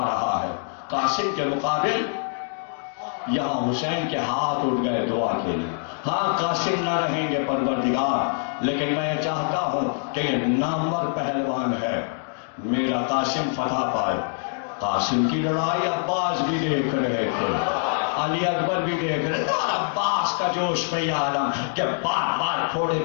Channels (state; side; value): silent; right; digital silence